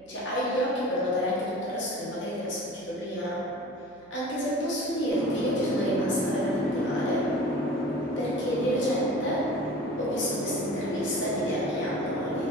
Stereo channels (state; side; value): noise; right; hum, 29 dB below the sound